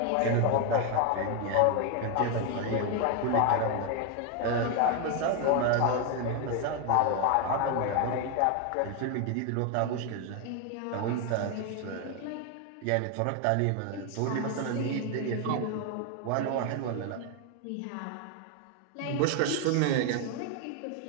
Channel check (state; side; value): different; both; correlation 0.01